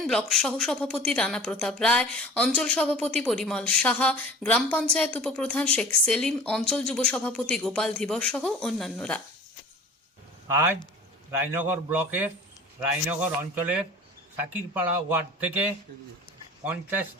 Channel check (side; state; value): both; normal; correlation 0.43